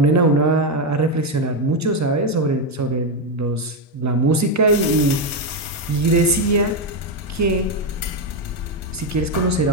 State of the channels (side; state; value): both; normal; correlation 0.06